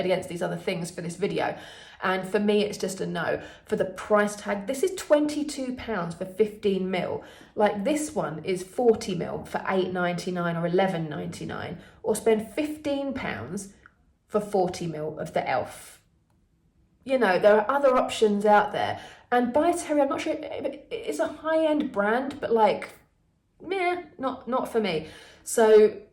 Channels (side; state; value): both; identical; correlation 1.00